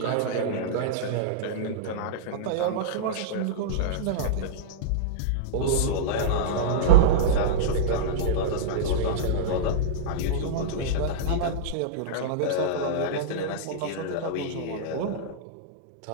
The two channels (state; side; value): different; both; correlation -0.03